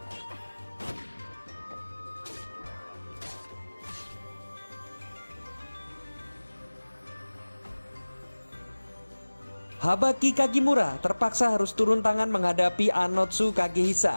Habaki Kagimura terpaksa harus turun tangan menghadapi Anotsu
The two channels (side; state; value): both; inverted; correlation -1.00